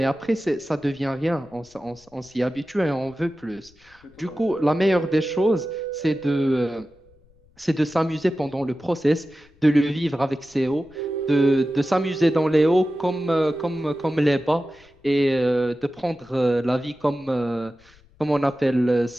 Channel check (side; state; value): left; noise; rumble, 30 dB below the sound